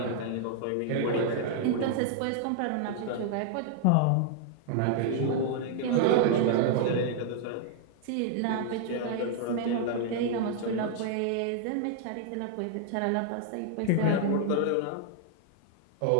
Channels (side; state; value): both; different; correlation 0.00